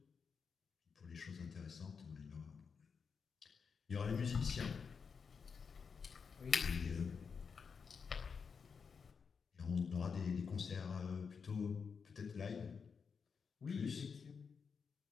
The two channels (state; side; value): quieter; right; 5.8 dB